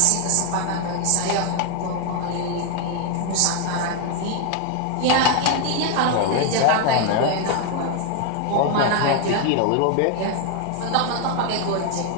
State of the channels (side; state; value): both; different; correlation 0.00